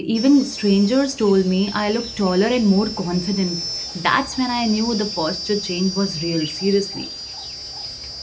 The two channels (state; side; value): identical; both; correlation 1.00